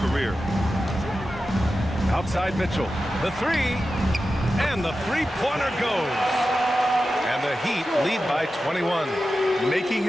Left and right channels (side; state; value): both; normal; correlation 0.92